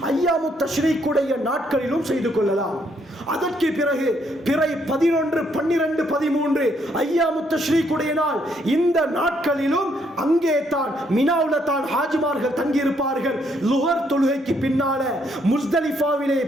ஐயாமு தஷ்ரீக்குடைய நாட்களிலும் செய்து கொள்ளலாம். அதற்கு பிறகு பிறை 11, 12, 13 ஐயாமு தஷ்ரீக்குடைய நாள், இந்த நாட்களிலும் அங்கே தான் மினாவுல தான் ஹாஜிமார்கள் தங்கியிருப்பார்கள். லுஹர் தொழுகைக்கு பின்னால முஸ்தலிஃபாவிலே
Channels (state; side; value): normal; both; correlation 0.71